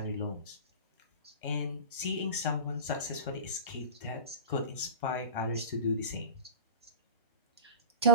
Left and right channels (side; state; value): both; inverted; correlation -0.33